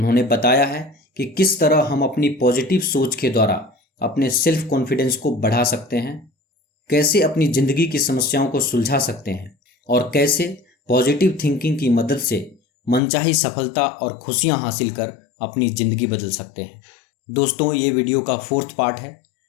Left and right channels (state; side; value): drops out; right; at 13.0 s